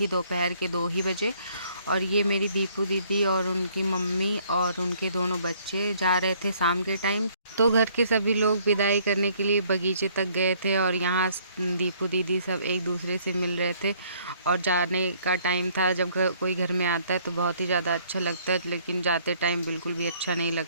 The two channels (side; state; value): both; inverted; correlation -0.63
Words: दोपहर के 2 ही बजे। और ये मेरी दीपू दीदी और उनकी मम्मी और उनके दोनों बच्चे जा रहे थे शाम के टाइम। तो घर के सभी लोग विदाई करने के लिए बगीचे तक गए थे, और यहाँ दीपू दीदी सब एक दूसरे से मिल रहे थे। और जाने का टाइम था। जब कोई घर में आता है तो बहुत ही ज़्यादा अच्छा लगता है, लेकिन जाते टाइम बिल्कुल भी अच्छा नहीं